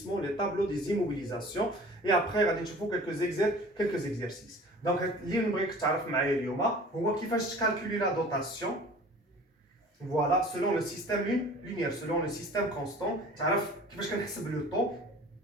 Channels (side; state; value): both; normal; correlation 0.45